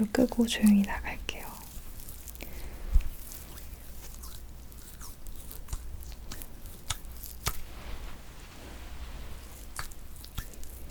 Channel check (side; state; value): both; identical; correlation 1.00